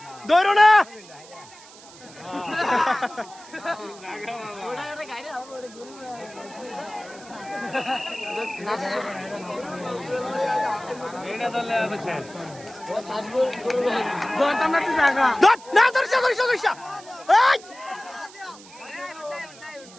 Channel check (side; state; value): right; noise; hiss, 20 dB below the sound